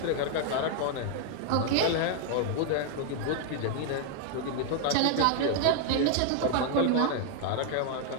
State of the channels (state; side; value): different; both; correlation 0.00